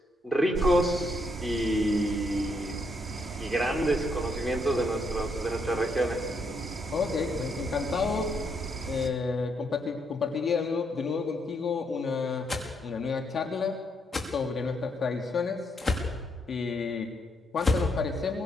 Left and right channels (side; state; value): both; normal; correlation 0.75